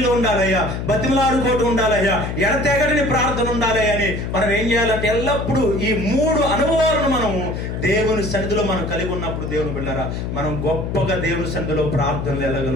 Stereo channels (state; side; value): noise; left; hum, 4 dB below the sound